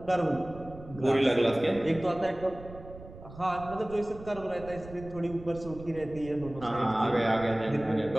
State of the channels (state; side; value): noise; right; rumble, 16 dB below the sound